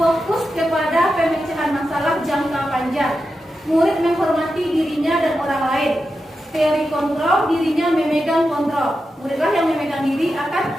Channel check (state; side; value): normal; both; correlation 0.89